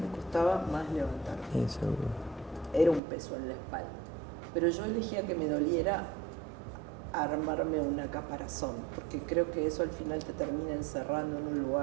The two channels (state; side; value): drops out; left; at 3.0 s